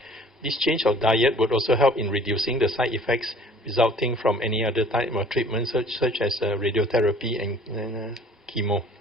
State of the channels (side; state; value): both; normal; correlation 0.51